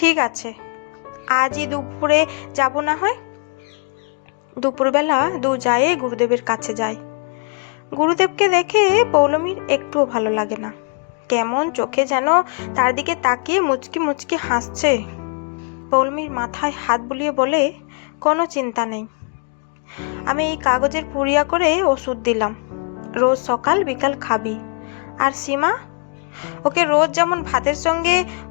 আছে, আজই দুপুরে যাব না হয়। দুপুরবেলা 2 জায়ে গুরুদেবের কাছে যায়। গুরুদেবকে দেখে পৌলমীর একটুও ভালো লাগে না। কেমন চোখে যেন তার দিকে তাকিয়ে মুচকি মুচকি হাসছে। পৌলমীর মাথায় হাত বুলিয়ে বলে, কোনো চিন্তা নেই, আমি এই কাগজের পুড়িয়া করে ওষুধ দিলাম, রোজ সকাল বিকাল খাবি। আর সীমা, ওকে রোজ যেমন ভাতের সঙ্গে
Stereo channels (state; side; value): quieter; right; 38.1 dB